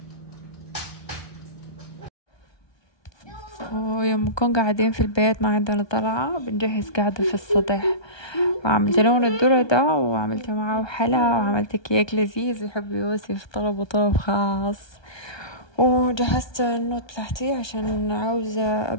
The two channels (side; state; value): right; late; 1.2 ms